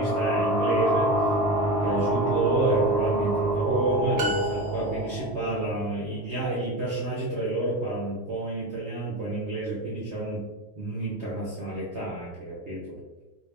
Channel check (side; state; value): both; normal; correlation 0.24